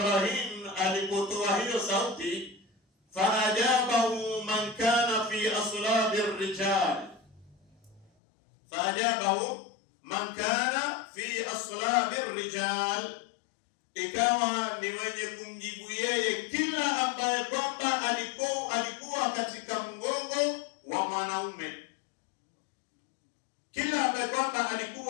alipotoa hiyo sauti, faajabahu man kana fi aslabi ar-rijal, faajabahu man kana fi aslabi ar-rijal, ikawa ni mwenye kumjibu yeye kila ambaye kwamba alikuwa katika mgongo wa mwanaume. Kila ambaye kwamba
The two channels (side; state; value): right; drops out; at 8.1 s